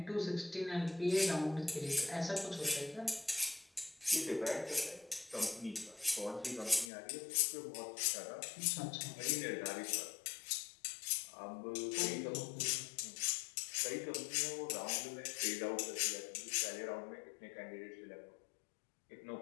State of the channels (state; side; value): drops out; right; at 6.9 s